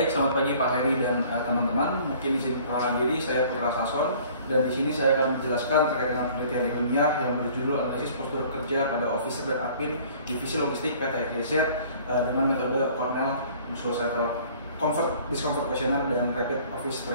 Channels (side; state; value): both; inverted; correlation -0.52